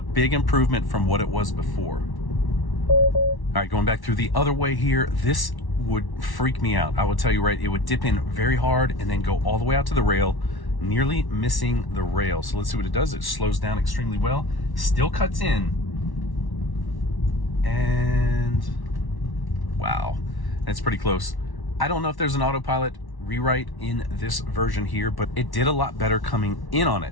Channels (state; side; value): late; right; 1.1 ms